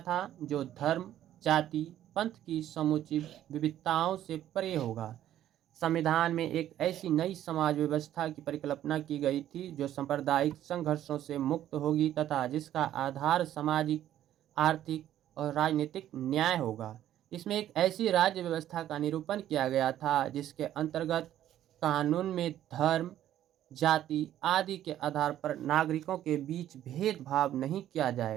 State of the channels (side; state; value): left; quieter; 12.0 dB